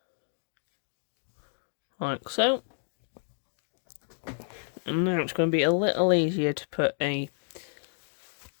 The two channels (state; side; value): silent; right; digital silence